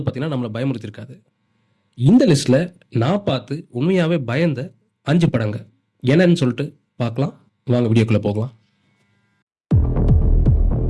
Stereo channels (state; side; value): identical; both; correlation 1.00